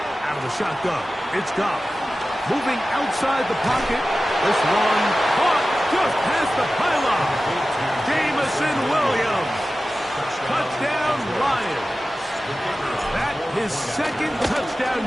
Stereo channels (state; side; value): normal; both; correlation 0.95